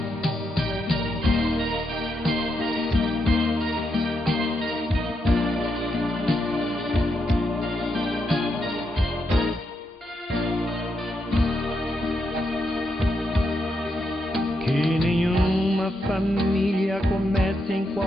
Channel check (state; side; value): normal; both; correlation 0.82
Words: Que nenhuma família comece em